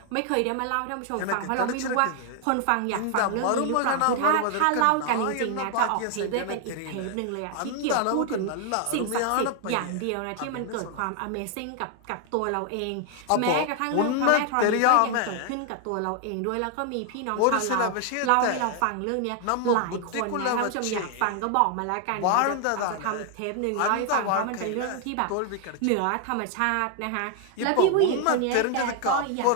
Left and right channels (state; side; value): different; both; correlation 0.00